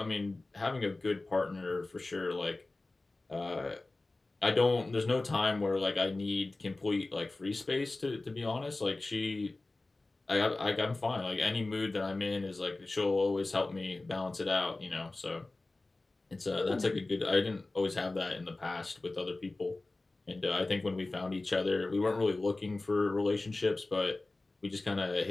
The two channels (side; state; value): right; quieter; 3.1 dB